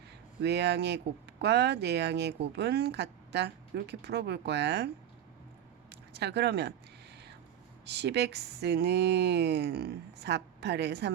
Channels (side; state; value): left; quieter; 10.3 dB